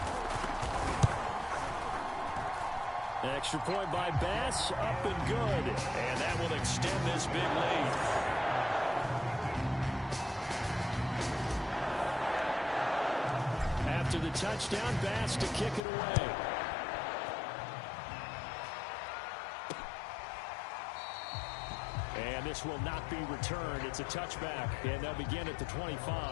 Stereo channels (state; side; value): drops out; right; at 15.8 s